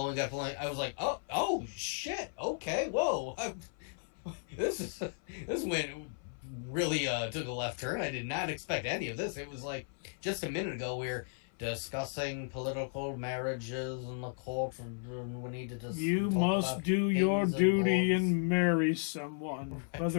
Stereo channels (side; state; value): right; silent; 55 dB below the other